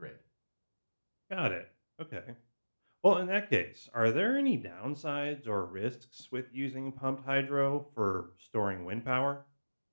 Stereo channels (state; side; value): inverted; both; correlation -1.00